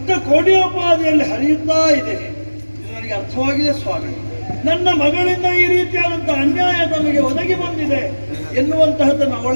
ಕೋಡಿಯೋಪಾದಿಯಲ್ಲಿ ಹರಿಯುತ್ತಾ ಇದೆ. ಇದು ನನಗೆ ಅರ್ಥವಾಗಿದೆ ಸ್ವಾಮಿ. ನನ್ನ ಮಗಳಿಂದ ಈ ರೀತಿಯಾದಂತಹ ಅನ್ಯಾಯ ತಮಗೆ ಒದಗಿ ಬಂದಿದೆ ಎನ್ನುವಂತಹದ್ದನ್ನು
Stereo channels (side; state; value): both; inverted; correlation -1.00